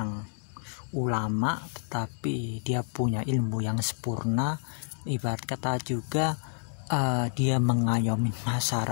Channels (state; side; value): silent; right; digital silence